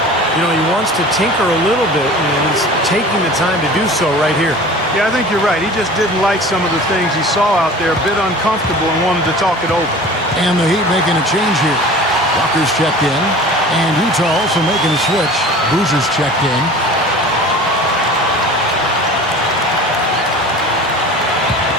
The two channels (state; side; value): normal; both; correlation 0.41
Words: You know, he wants to tinker a little bit, and he's taking the time to do so right here. Yeah, I think you're right. He just didn't like some of the things he saw out there, a bit uncomfortable, and wanted to talk it over. And the Heat making a change here. Walker's checked in, and Utah also making a switch. Boozer's checked in.